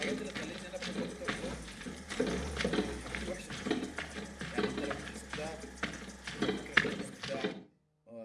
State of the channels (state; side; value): identical; both; correlation 1.00